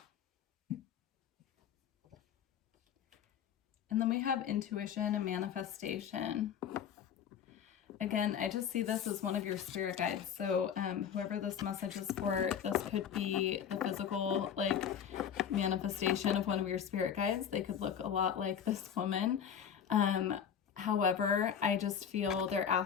And then we have intuition and manifestation. Again, I just see this as one of your spirit guides. So whoever this message is for, this could be the physical, like, manifestation of one of your spirit guides. They could look a lot like this woman. However, I just feel they're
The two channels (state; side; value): quieter; right; 8.3 dB